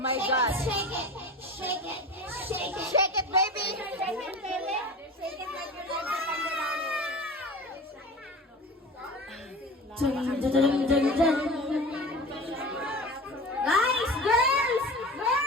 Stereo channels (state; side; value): normal; both; correlation 0.34